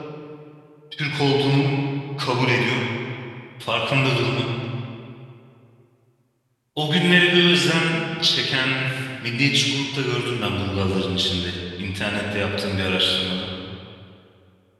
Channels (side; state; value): both; identical; correlation 1.00